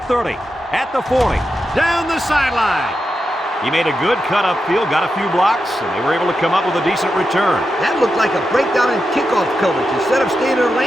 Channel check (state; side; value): normal; both; correlation 0.88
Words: 30. At the 40. Down the sideline. He made a good cut upfield, got a few blocks, and they were able to come up with a decent return. That looked like a breakdown in kickoff coverage. Instead of staying in their